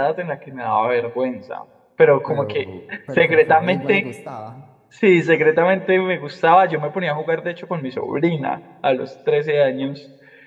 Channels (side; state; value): both; identical; correlation 1.00